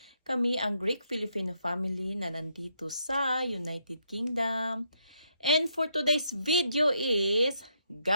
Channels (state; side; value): inverted; both; correlation -0.76